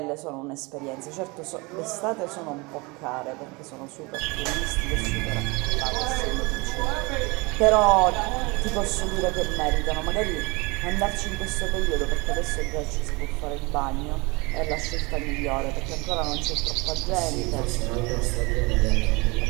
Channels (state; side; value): quieter; left; 26.2 dB